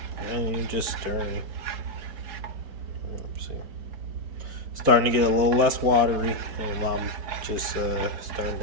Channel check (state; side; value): late; left; 4.4 ms